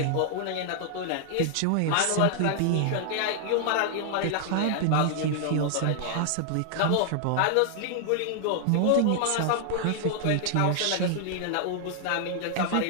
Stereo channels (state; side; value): different; both; correlation -0.01